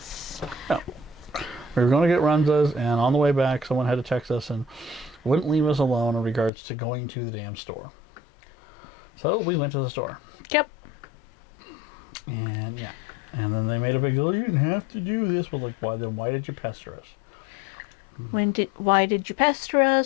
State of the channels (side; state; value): right; drops out; at 6.5 s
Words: Yeah. We were going to get runzas, and on the way back, someone had to text us and wouldn't leave us alone in regards to going to the damn store. So we went to the store. Yep. And yeah. And then they made a big deal. You didn't have to do this. Well, like, why did you pester us? Why did you pester